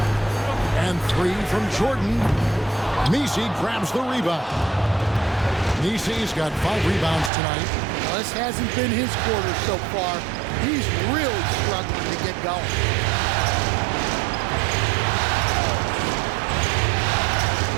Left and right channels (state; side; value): drops out; left; at 7.3 s